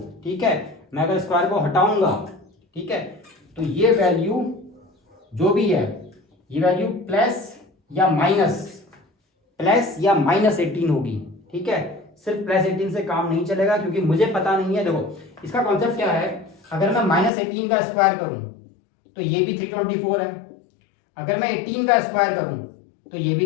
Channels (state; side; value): drops out; right; at 17.3 s